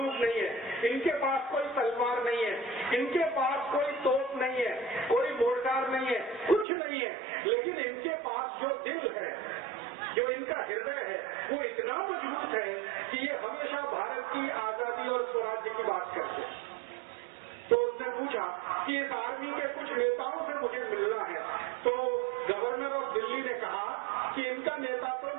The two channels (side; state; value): left; drops out; at 6.7 s